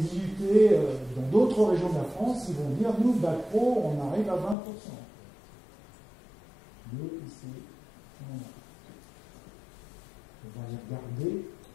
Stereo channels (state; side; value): drops out; right; at 4.5 s